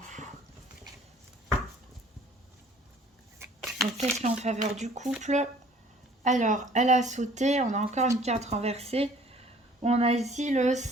Donc qu'est-ce qui est en faveur du couple? Alors, elle a sauté, on a encore une carte renversée. On a ici le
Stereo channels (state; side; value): normal; both; correlation 0.53